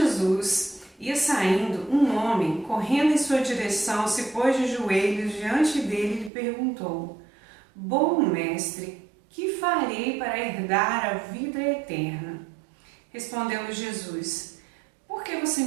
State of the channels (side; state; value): left; drops out; at 6.3 s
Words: Ia saindo, um homem, correndo em sua direção, se pôs de joelhos diante dele e lhe perguntou: Bom mestre, que farei para herdar a vida eterna? Respondeu-lhe Jesus: Por que você